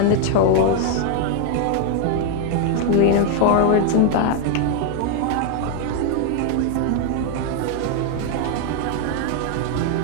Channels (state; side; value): different; both; correlation 0.00